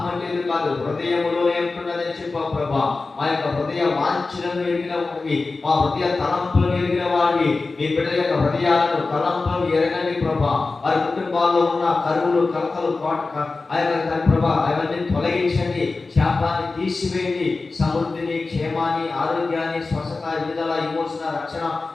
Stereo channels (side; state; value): right; quieter; 3.7 dB